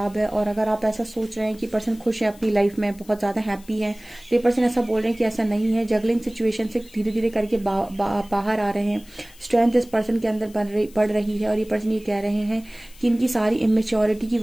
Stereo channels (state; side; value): noise; left; hiss, 24 dB below the sound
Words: है। और अगर आप ऐसा सोच रहे हैं कि पर्सन खुश है अपनी लाइफ में, बहुत ज़्यादा हैप्पी है, तो ये पर्सन ऐसा बोल रहे हैं कि ऐसा नहीं है। जगलिंग सिचुएशन से धीरे धीरे करके बाहर आ रहे हैं। स्ट्रेंथ इस पर्सन के अंदर बढ़ रही है। और ये पर्सन ये कह रहे हैं कि इनकी सारी इमेच्योरिटी की